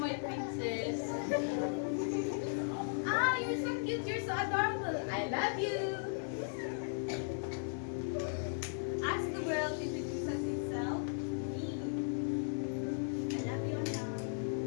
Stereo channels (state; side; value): silent; right; digital silence